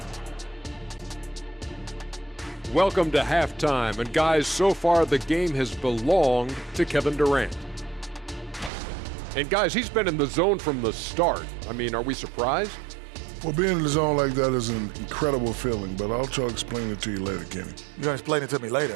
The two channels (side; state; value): left; drops out; at 8.7 s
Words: Welcome to halftime, and guys, so far the game has belonged to Kevin Durant. And guys, he's been in the zone from the start. I mean, are we surprised? Well, being in the zone like that is an incredible feeling, but I'll try to explain it to you later, Kenny. You're gonna explain it to me